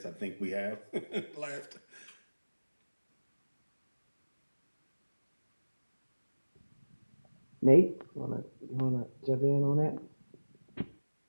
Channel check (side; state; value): both; inverted; correlation -1.00